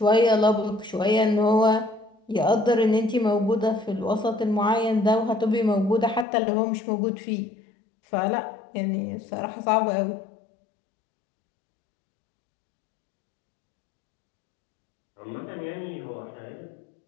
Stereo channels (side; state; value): right; drops out; at 6.2 s